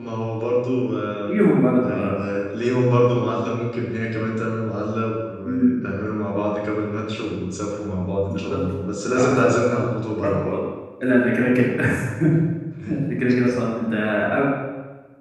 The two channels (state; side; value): identical; both; correlation 1.00